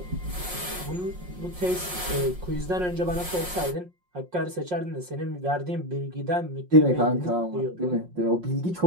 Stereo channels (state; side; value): late; left; 5.6 ms